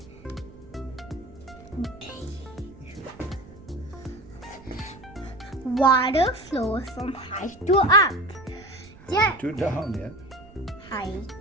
Water flows from high to up. Yeah. To down, yeah. High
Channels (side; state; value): right; noise; rumble, 21 dB below the sound